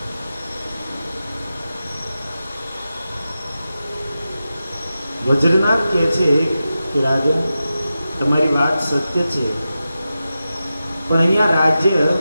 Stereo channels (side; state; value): both; inverted; correlation -0.92